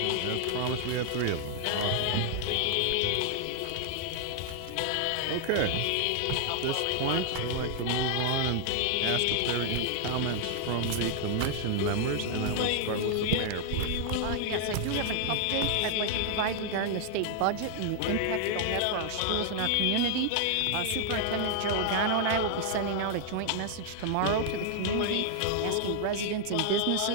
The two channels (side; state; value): both; different; correlation 0.00